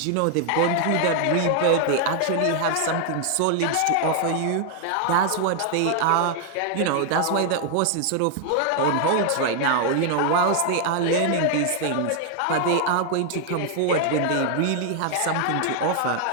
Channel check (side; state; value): both; different; correlation 0.00